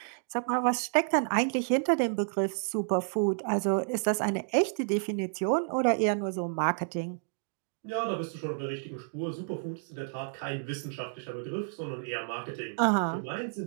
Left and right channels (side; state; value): left; silent; digital silence